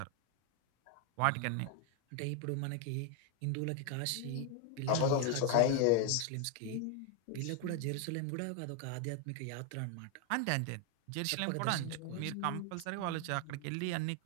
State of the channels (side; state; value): both; different; correlation 0.01